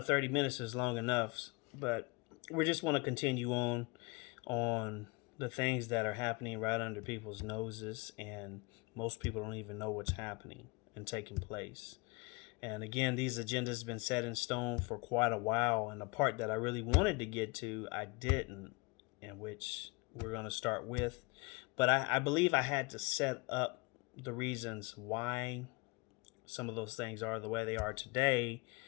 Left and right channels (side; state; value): right; quieter; 28.1 dB